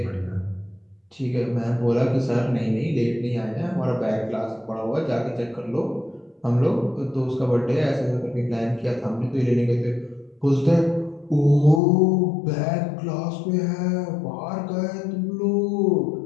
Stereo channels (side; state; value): right; drops out; at 11.8 s